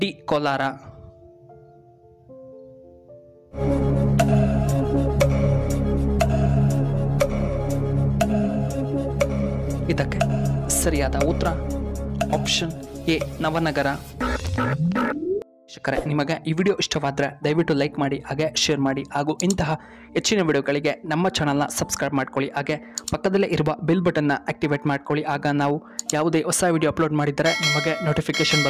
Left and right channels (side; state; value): both; identical; correlation 1.00